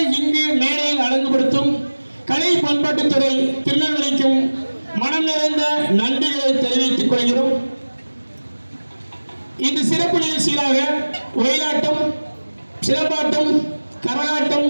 இங்கு மேடையில் அழகுபடுத்தும் கலை பண்பாட்டுத்துறை திருநெல்வேலிக்கும் மனம் நிறைந்த நன்றிகளை தெரிவித்துக் கொள்கிறோம். இந்த சிறப்பு நிகழ்ச்சிகளாக ஒயிலாட்டம், சிலம்பாட்டம், கரகாட்டம்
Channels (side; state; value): both; inverted; correlation -1.00